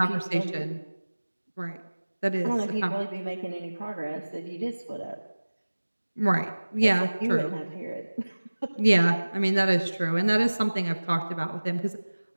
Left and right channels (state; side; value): inverted; both; correlation -1.00